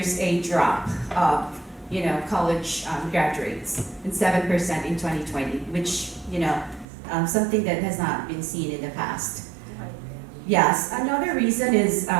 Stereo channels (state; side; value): drops out; left; at 6.9 s